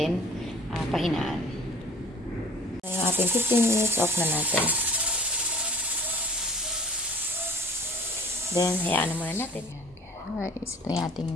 pahinaan. Yung ating 15 minutes off na natin. Then, hayaan na muna natin. Guys, ito yung ating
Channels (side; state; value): both; normal; correlation 0.48